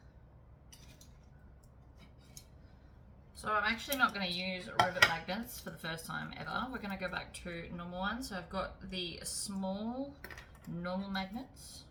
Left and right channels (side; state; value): both; identical; correlation 1.00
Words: So I'm actually not going to use rivet magnets for the first time ever. We're going to go back to normal ones. So I've got the small normal magnets.